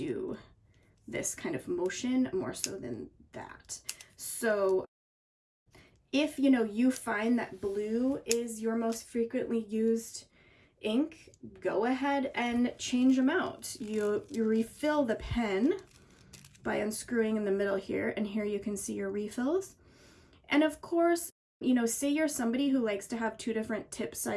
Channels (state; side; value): identical; both; correlation 1.00